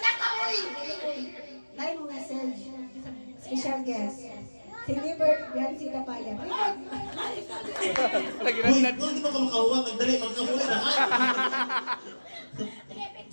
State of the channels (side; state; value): both; inverted; correlation -1.00